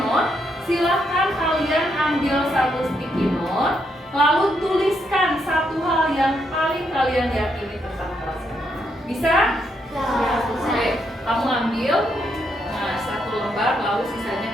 Silahkan kalian ambil satu sticky note, lalu tuliskan satu hal yang paling kalian yakini tentang kelas ini. Bisa? Oke, kamu ambil satu lembar, lalu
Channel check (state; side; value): normal; both; correlation 0.78